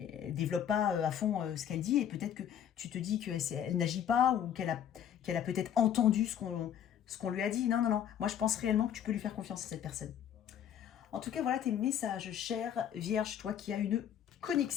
ne développe pas à fond ce qu'elle dit et peut-être que tu te dis qu'elle n'agit pas ou qu'elle a peut-être entendu ce qu'on lui a dit. Non, non, non. Moi, je pense réellement que tu peux lui faire confiance à cette personne. En tout cas, voilà tes messages, chère Vierge, toi qui as une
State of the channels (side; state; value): right; quieter; 9.5 dB